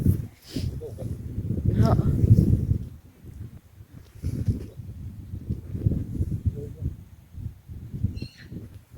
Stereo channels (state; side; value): identical; both; correlation 1.00